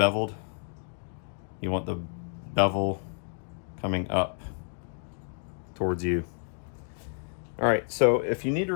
You want the bevel coming up towards you. All right, so if you need to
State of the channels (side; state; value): right; silent; digital silence